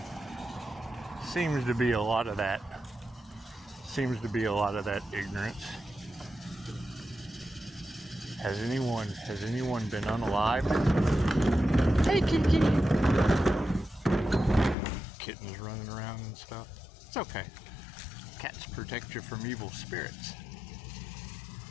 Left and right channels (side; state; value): right; drops out; at 14.8 s